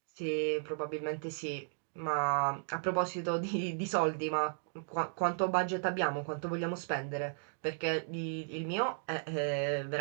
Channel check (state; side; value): silent; left; digital silence